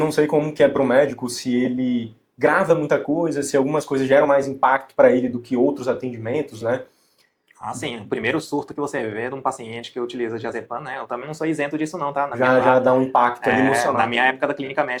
sei como que é para o médico, se ele grava muita coisa, se algumas coisas geram mais impacto para ele do que outros atendimentos, né? Sim, o primeiro surto que você vê de um paciente que utiliza diazepam, né? Eu também não sou isento disso não, tá? Já dá um impacto ali emocional. Na minha época da clínica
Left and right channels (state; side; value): identical; both; correlation 1.00